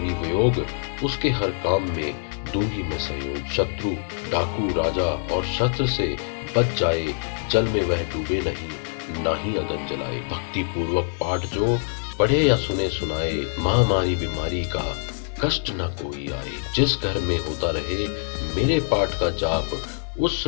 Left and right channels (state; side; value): silent; right; 60 dB below the other